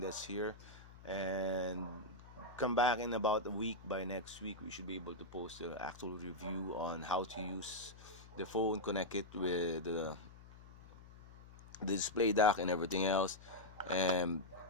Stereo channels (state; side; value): noise; left; hum, 19 dB below the sound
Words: here. And come back in about a week. By next week we should be able to post the actual review on how to use the phone, connect it with the display dock and everything else, and